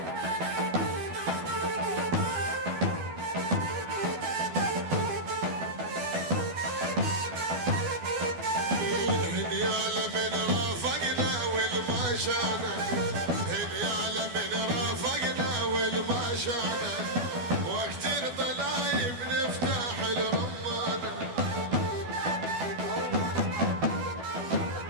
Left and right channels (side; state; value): left; late; 12 ms